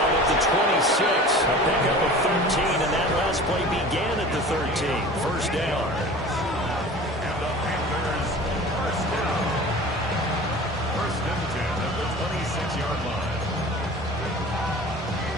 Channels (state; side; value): normal; both; correlation 0.40